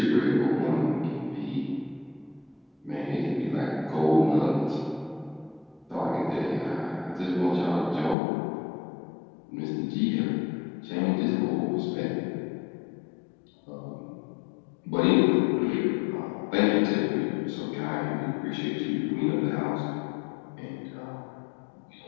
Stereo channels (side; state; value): right; drops out; at 8.2 s